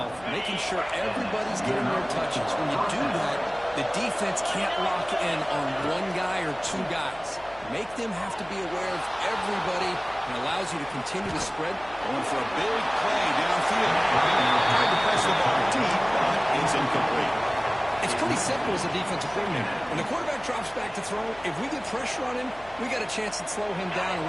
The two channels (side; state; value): left; noise; hum, 23 dB below the sound